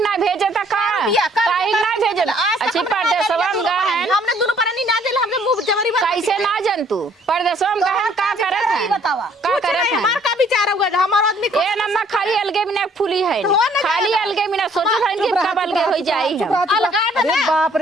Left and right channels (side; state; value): both; normal; correlation 0.61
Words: ना भेजे था का काहे ना भेजे अच्छी परदेसवा में गा है हमने दोनों परानी ना दिल हमने मुंह जमरी बन कैसे ना जन तू परदेसवा में गा है का करत है बतावा का करत है हमार का विचार होगा हमार आदमी ए नम्मा खाली अलगे बिना फूली है खाली अलगे बिना सोचो था कि कब अलगे हो जाई चुप हम रह, चुप रह। अलगा अरे ना। बाप